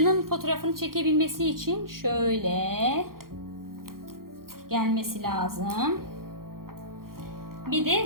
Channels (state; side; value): late; left; 0.92 ms